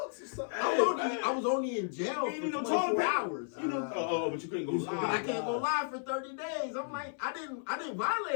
or something. I was only in jail You for know, 24 hours. You know, but you couldn't go But I live. can't go live for 30 days. I'm like, I didn't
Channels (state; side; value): silent; right; 55 dB below the other